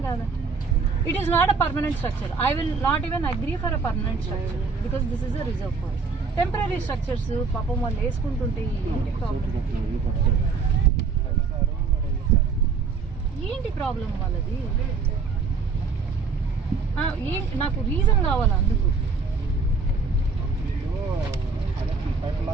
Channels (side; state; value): left; quieter; 4.9 dB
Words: కాదా? It is not a permanent structure. I will not even agree for a permanent structure because this is a reserve forest. Temporary structures పాపం వాళ్ళు వేసుకుంటుంటే ఏంటి ప్రాబ్లం? ఏంటి problem వాళ్ళది? ఏంటి నాకు reason కావాలి అందుకు.